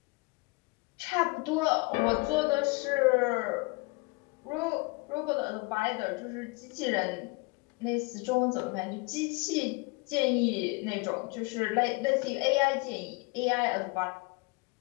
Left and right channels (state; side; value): quieter; right; 27.3 dB